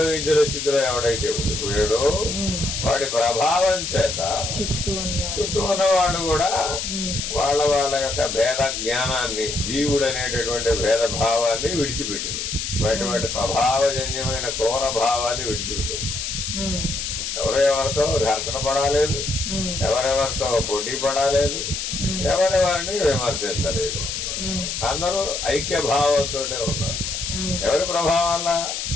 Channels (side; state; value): left; noise; hiss, 4 dB below the sound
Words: స్థితిలో ఎవడైతే ఉండిపోయాడో వాడి ప్రభావం చేత చుట్టూ ఉన్న వాళ్ళు కూడా వాళ్ళ యొక్క భేద జ్ఞానాన్ని, జీవుడు అనేటటువంటి భేద భావాన్ని విడిచిపెట్టింది. వాటి స్వభావజన్యమైన క్రూర భావాన్ని విడిచిపెట్టింది. ఎవరెవరితో ఘర్షణ పడాలేదు, ఎవరెవరితో పోటీ పడాలేదు, ఎవరెవరిని విమర్శించలేదు. అందరూ ఐక్య భావంతో ఉన్నారు. ఎవరి ప్రభావం వల్ల?